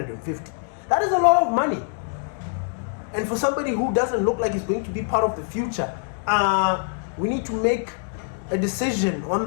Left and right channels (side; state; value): right; silent; digital silence